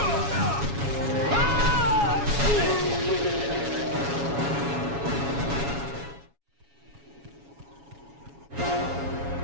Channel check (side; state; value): left; late; 7.2 ms